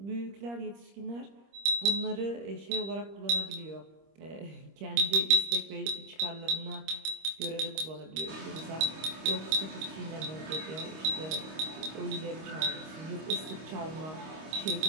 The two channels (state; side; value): late; left; 25 ms